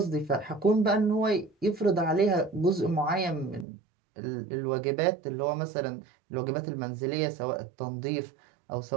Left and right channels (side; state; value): left; drops out; at 3.7 s